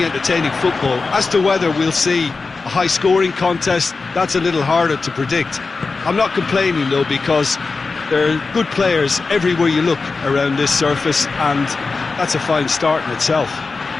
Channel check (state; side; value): quieter; right; 4.2 dB